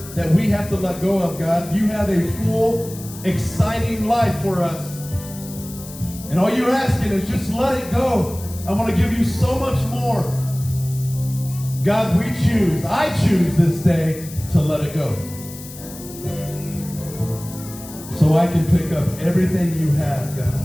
that we have to let go of, God. You have a full, exciting life for us. And all you're asking is just let it go. I want to give you so much more. God, I choose this day to let it go. So I can pick up everything you have,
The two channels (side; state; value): left; noise; hiss, 15 dB below the sound